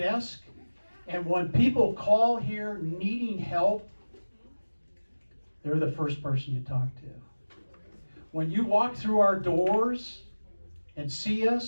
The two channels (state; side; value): inverted; both; correlation -1.00